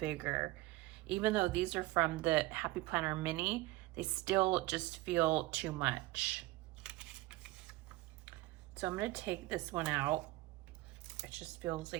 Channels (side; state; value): left; quieter; 19.1 dB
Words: Even though these are from the Happy Planner Mini, they still just feel too much. So I'm going to take this one out. It just feels